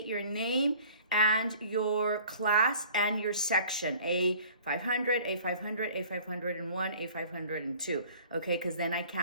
your name and your class and your section, A500, A500, A501, A502, okay, because then I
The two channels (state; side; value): inverted; both; correlation -0.50